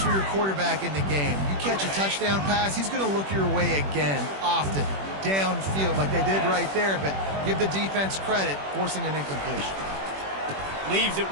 your quarterback in the game. You catch a touchdown pass, he's going to look your way again, often, downfield like they did right there, but give the defense credit, forcing an incompletion. Leaves it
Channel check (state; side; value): late; left; 21 ms